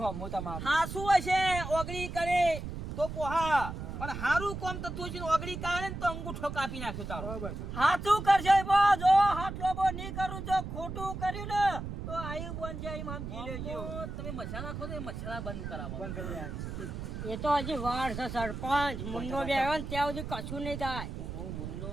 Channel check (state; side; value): noise; right; rumble, 7 dB below the sound